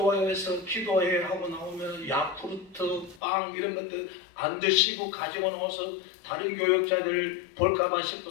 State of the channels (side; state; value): right; drops out; at 3.2 s